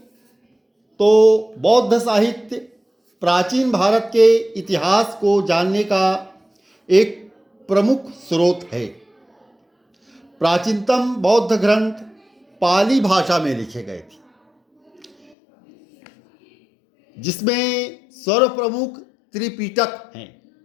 तो बौद्ध साहित्य प्राचीन भारत के इतिहास को जानने का एक प्रमुख स्रोत है। प्राचीनतम बौद्ध ग्रंथ पाली भाषा में लिखे गए थे, जिसमें सर्वप्रमुख त्रिपिटक हैं।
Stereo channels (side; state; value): right; drops out; at 15.4 s